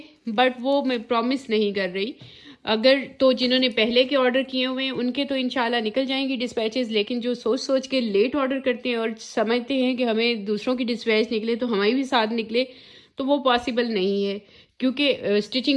बट वो मैं प्रॉमिस नहीं कर रही। अगर तो जिन्होंने पहले के ऑर्डर किए हुए हैं उनके तो इंशाल्लाह निकल जाएंगी डिस्पैचेस, लेकिन जो सोच सोच के लेट ऑर्डर करते हैं और समझते हैं कि हमें दूसरों की डिस्पैच निकले तो हमारी भी साथ निकले, तो वो पॉसिबल नहीं है, क्योंकि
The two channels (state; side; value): identical; both; correlation 1.00